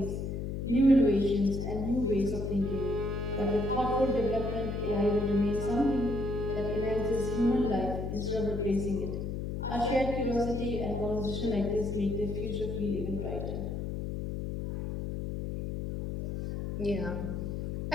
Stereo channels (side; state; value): left; noise; hum, 4 dB below the sound